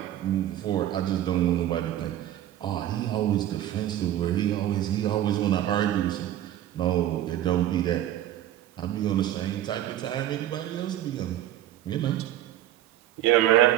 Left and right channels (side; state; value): left; quieter; 12.5 dB